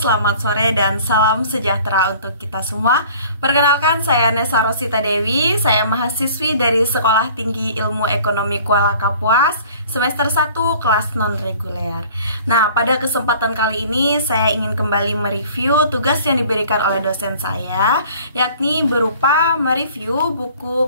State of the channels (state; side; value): inverted; both; correlation -0.50